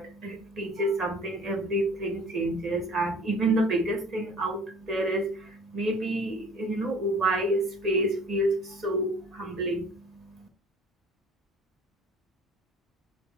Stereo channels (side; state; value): both; normal; correlation 0.48